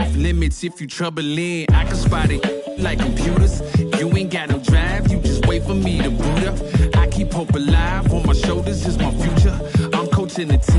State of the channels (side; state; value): both; identical; correlation 1.00